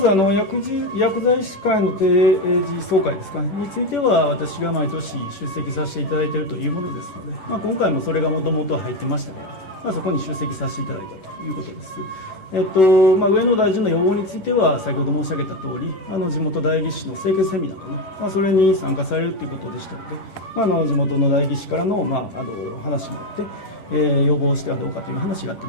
薬剤師会の定時総会ですかについては、私が毎年出席させていただいているというものですので、今回もそれがもともと入ってましたから、そこに出席させていただいたということです。上野大臣の要望については、先ほど申し上げた通り、地元代議士の清潔セミナーかな、それに参加されるということでしたので、地元の代議士からの、話もあって、要望してはどうかという話があった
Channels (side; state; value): right; late; 11 ms